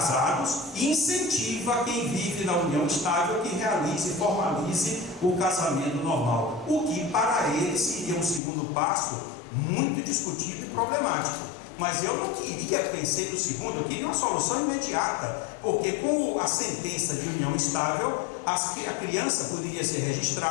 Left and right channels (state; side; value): drops out; right; at 8.4 s